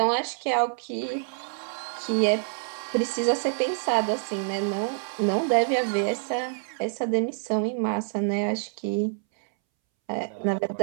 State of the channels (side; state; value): left; silent; 60 dB below the other